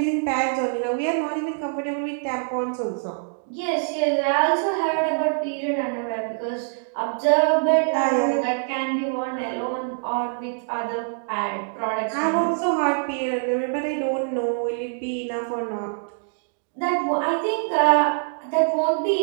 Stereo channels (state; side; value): silent; left; digital silence